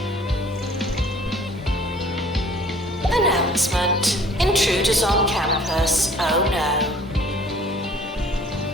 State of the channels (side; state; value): both; normal; correlation 0.53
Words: Announcement. Intruders on campus. Oh no.